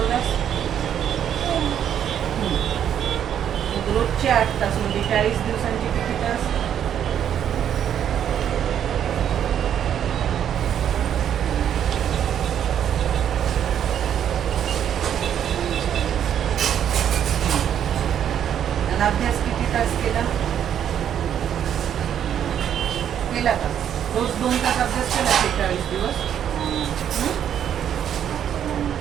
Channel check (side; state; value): left; quieter; 9.5 dB